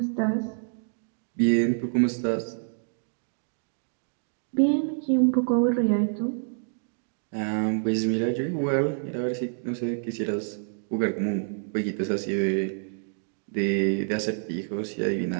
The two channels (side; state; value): left; silent; digital silence